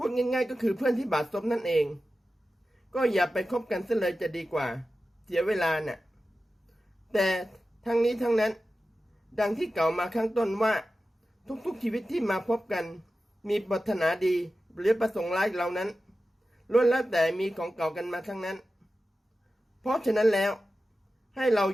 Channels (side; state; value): both; normal; correlation 0.93